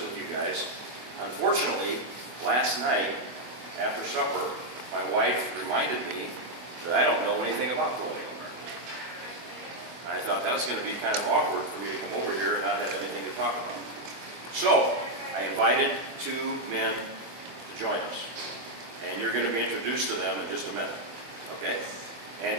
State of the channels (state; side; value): late; left; 24 ms